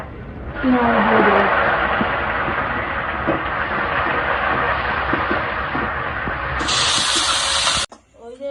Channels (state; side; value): identical; both; correlation 1.00